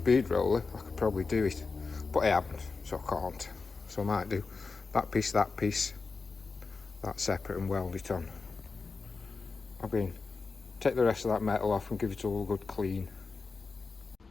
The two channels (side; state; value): right; quieter; 4.4 dB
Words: roller, I could probably do it, but I haven't, so I can't. So I might do that piece, that separate, and weld it on. Take the rest of that metal off and give it all a good clean.